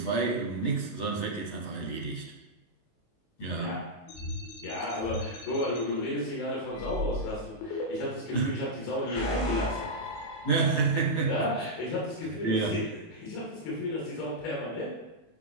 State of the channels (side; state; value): right; late; 18 ms